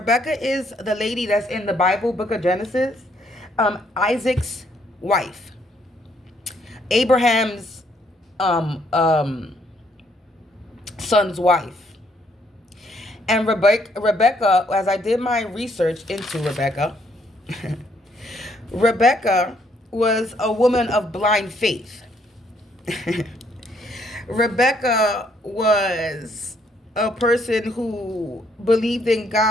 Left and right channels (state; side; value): normal; both; correlation 0.69